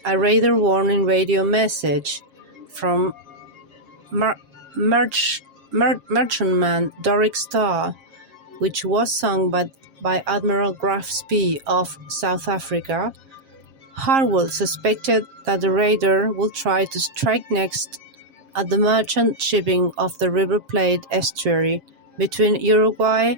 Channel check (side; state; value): left; late; 7.4 ms